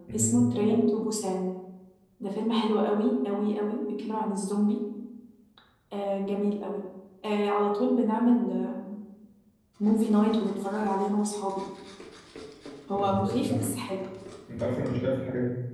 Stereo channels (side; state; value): both; identical; correlation 1.00